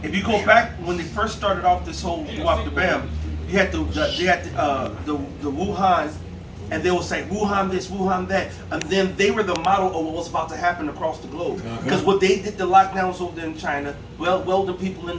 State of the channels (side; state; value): both; identical; correlation 1.00